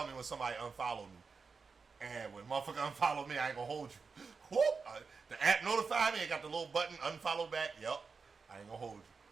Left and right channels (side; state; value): left; quieter; 4.9 dB